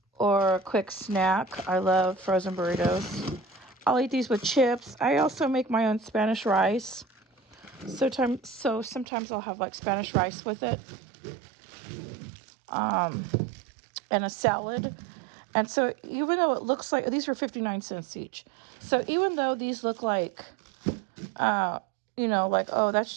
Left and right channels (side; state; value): left; drops out; at 9.1 s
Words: or a quick snack. I love frozen burritos. I'll eat these with chips. I also make my own Spanish rice. So sometimes I'll have like Spanish rice with it. And a salad. And so even though it looks like, these were 59 cents each. So even though these look like, like, oh, that's